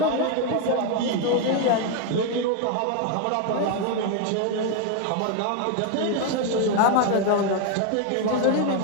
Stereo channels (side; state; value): both; different; correlation 0.01